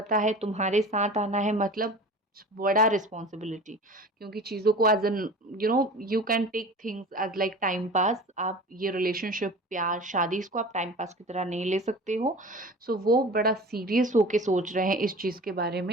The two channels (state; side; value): normal; both; correlation 0.38